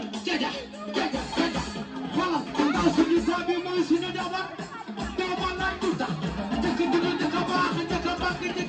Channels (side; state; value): both; identical; correlation 1.00